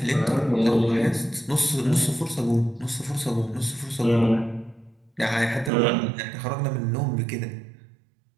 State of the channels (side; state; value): left; drops out; at 5.7 s